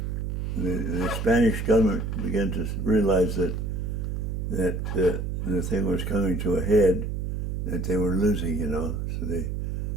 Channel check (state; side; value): noise; right; hum, 2 dB below the sound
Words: the Spanish government began to realize that the thing was coming to a head, that they were losing, you know. So they